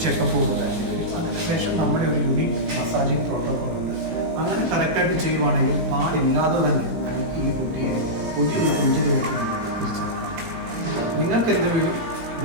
ചെക്കപ്പ് കൊടുക്കുകയാണെങ്കിൽ അതിനുശേഷം നമ്മുടെ ഒരു യൂണിക് മസാജിങ് പ്രോട്ടോകോൾ ഉണ്ട്. അങ്ങനെ കറക്റ്റായിട്ട് ചെയ്യുവാണെങ്കിൽ പാടില്ലാതെ തന്നെ നമുക്ക് ഈ കുട്ടിയെ ഒരു കൊഞ്ചിലേക്ക് തിരിച്ചെടുക്കാം. നിങ്ങൾക്ക് എന്തെങ്കിലും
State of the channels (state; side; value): late; left; 18 ms